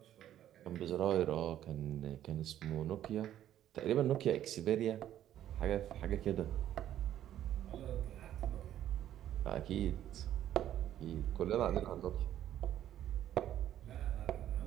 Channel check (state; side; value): quieter; left; 11.6 dB